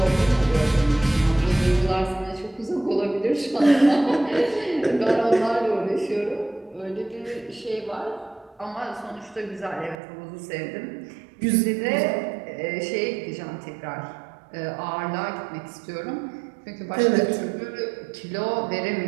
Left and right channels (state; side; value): drops out; left; at 10.0 s